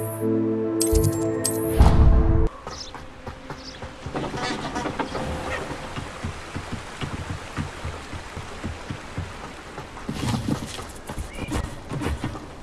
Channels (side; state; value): both; identical; correlation 1.00